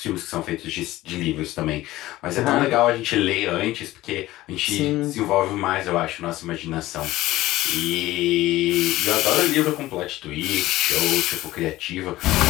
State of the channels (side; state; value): right; quieter; 16.7 dB